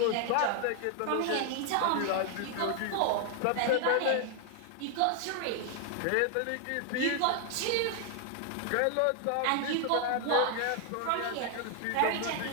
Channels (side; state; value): both; different; correlation 0.00